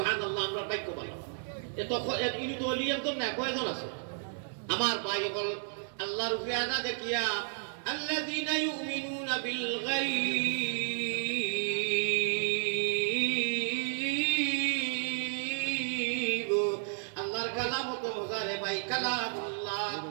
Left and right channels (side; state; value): left; silent; digital silence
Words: আমরা বাক্য বলা এত ইনি তো অলি একজন না কয়জন আছে আমার ভাই বল আল্লাহর উপরে আদা দেখিয়া আল্লাযীনা ইউমিনুনা বিল গায়ব আল্লাহর কালাম তো মজারে ভাই কালামুল্লাহ